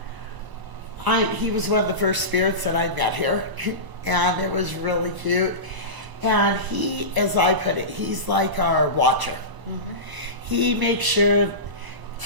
He was one of the first spirits that I met here, and it was really cute. And he, as I put it, he's like our watcher. He makes sure,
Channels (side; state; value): left; late; 1.0 ms